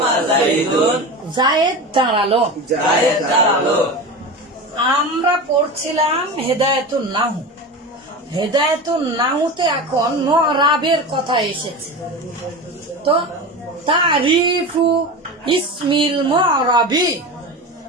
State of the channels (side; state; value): both; normal; correlation 0.27